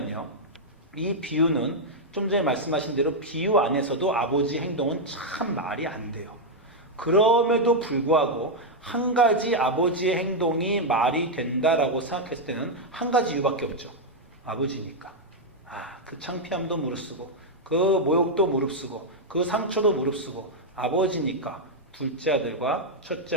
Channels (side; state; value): both; normal; correlation -0.01